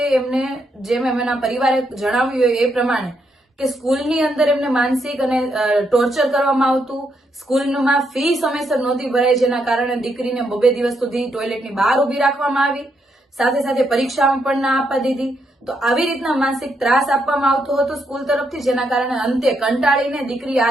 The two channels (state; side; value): normal; both; correlation 0.78